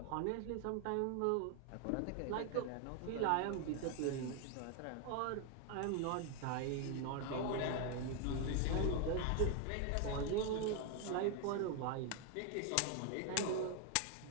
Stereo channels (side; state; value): both; different; correlation 0.00